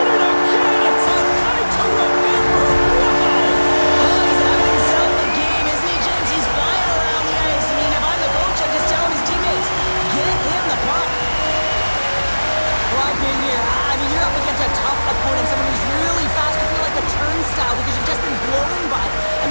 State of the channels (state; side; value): inverted; both; correlation -1.00